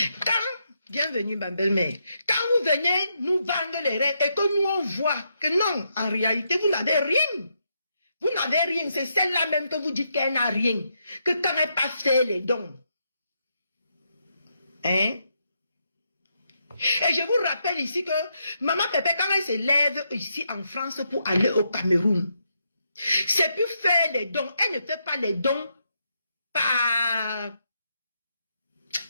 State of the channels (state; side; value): inverted; both; correlation -0.80